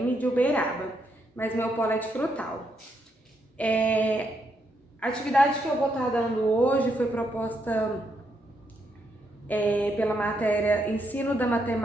de Uberaba, mas meu polo é de Frutal. A atividade que eu vou estar dando hoje foi proposta pela matéria Ensino da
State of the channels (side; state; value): both; normal; correlation 0.78